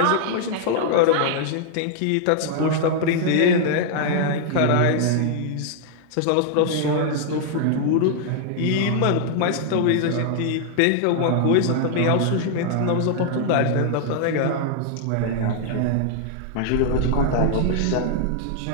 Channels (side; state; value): both; different; correlation -0.01